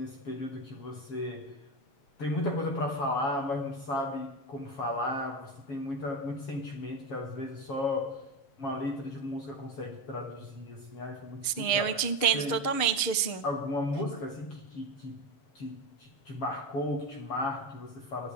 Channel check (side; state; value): right; late; 6.7 ms